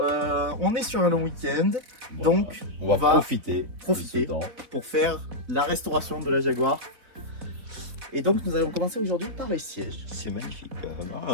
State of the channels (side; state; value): left; late; 3.8 ms